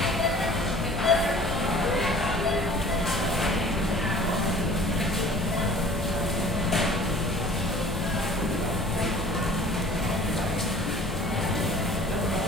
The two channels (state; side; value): normal; both; correlation 0.48